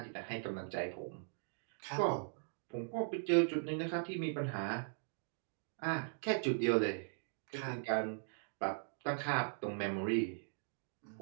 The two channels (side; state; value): left; silent; digital silence